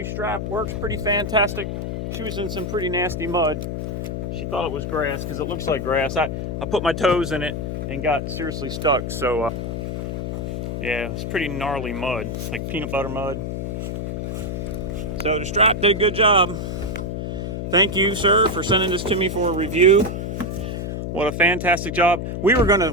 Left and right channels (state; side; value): noise; left; hum, 4 dB below the sound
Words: strap works pretty fantastic. She was in some pretty nasty mud. She thought it was grass because it looks like grass. I put my toes in it and got seriously stuck. So yeah, it's pretty gnarly mud, like peanut butter mud. So the strap did a good job. Thank you, sir, for sending this to me for a review. What a fantastic job. We were